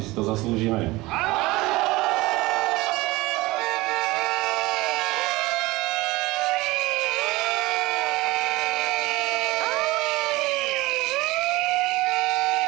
si to zaslúžime.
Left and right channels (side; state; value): left; quieter; 20.7 dB